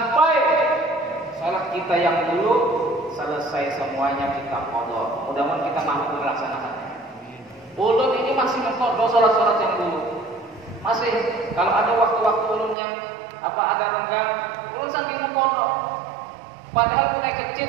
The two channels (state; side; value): drops out; left; at 12.8 s